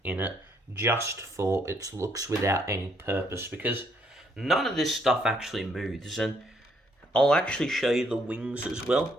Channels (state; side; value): normal; both; correlation 0.70